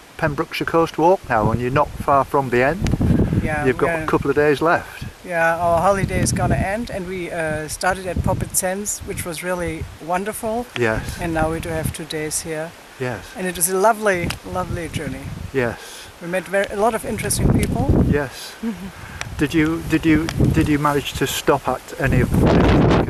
Pembrokeshire Coast Walk now, and you're not far from the end. Yeah, You've got a couple of days left. Yeah, our holiday is gonna end, and we started at Poppet Sands, which was really wonderful. Yes. And now we do have 2 days here. Yes. And it was a lovely, lovely journey. Yes. We met a lot of interesting people. Yes. Did you manage to stop at any of them? Like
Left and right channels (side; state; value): both; identical; correlation 1.00